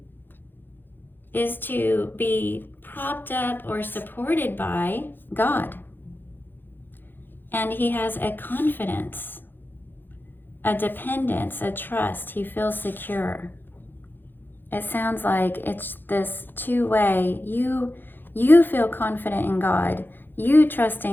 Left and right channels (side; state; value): right; late; 0.096 ms